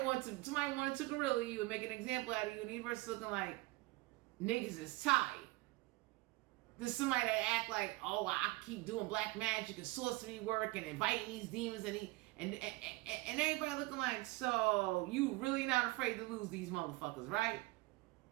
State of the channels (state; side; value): quieter; left; 22.2 dB